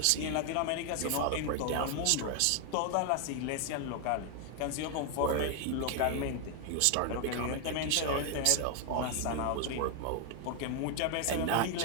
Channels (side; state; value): both; different; correlation 0.00